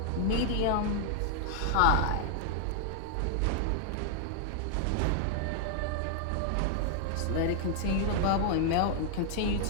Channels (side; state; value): both; different; correlation -0.01